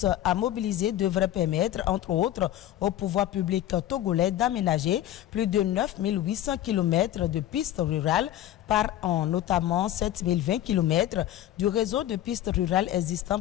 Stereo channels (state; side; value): quieter; right; 12.8 dB